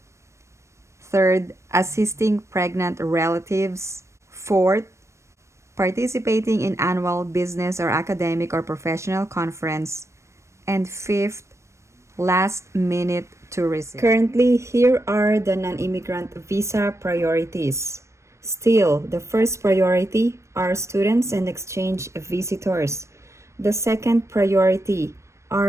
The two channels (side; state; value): left; late; 0.14 ms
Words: Third, assisting pregnant relatives. Fourth, participating in annual business or academic or professional conference. And fifth, last-minute tourism. Currently, here are the non-immigrant visa priorities. Still, the first priority are students and exchange visitors. The second priority